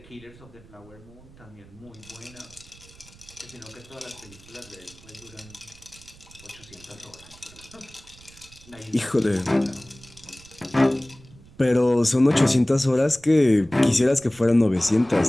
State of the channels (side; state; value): right; noise; rumble, 23 dB below the sound